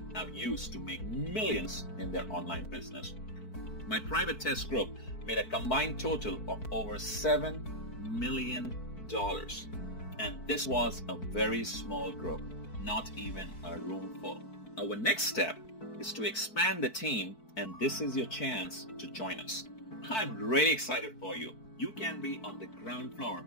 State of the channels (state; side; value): late; right; 4.5 ms